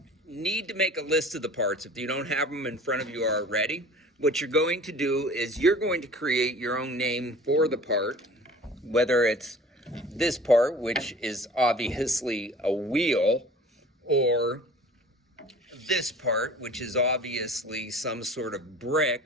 need to make a list of the parts, if you don't have them in front of you already, what you're going to do is you're going to create your own name for the part, whether it's this part, which is obviously a wheel, or this part, which is obviously some sort of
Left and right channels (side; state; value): both; normal; correlation 0.44